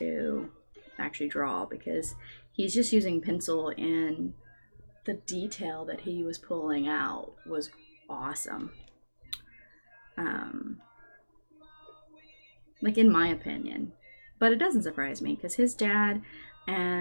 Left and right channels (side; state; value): both; inverted; correlation -1.00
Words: actually draw, because he's just using pencil, and the detail that he was pulling out was awesome. Like, in my opinion. But it doesn't surprise me, because his dad